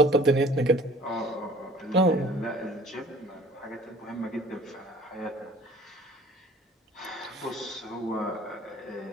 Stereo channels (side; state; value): both; normal; correlation 0.49